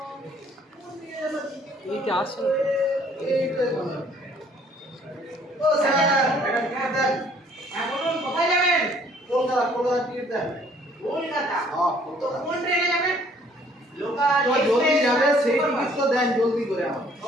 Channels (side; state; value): both; normal; correlation 0.60